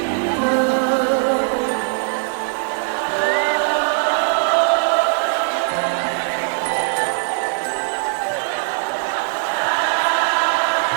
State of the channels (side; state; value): left; silent; digital silence